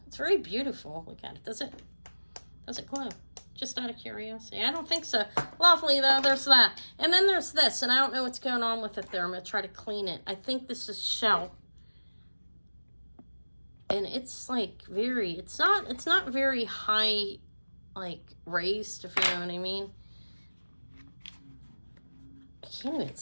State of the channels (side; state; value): both; inverted; correlation -1.00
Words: It's very beautiful. Look at it. Does it glow? Just out of curiosity. I don't think so. Lovely, though. There's that. And then there's this, and I don't know what's going on with it there. I'm going to try to clean it. I think this is shell. And it's like it's not very high, like raised, if you know what I mean. I can't even